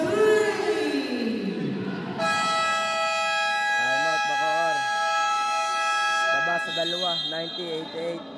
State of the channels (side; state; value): both; identical; correlation 1.00